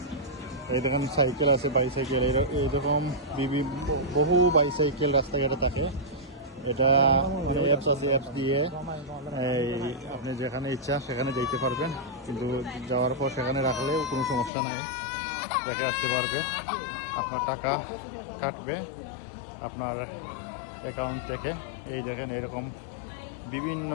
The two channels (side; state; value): right; drops out; at 14.5 s